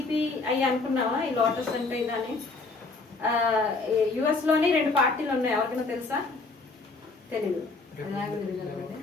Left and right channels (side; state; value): right; quieter; 3.7 dB